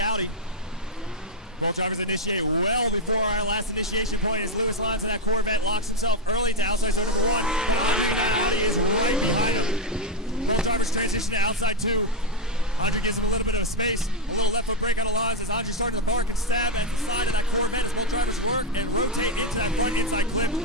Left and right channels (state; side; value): normal; both; correlation 0.05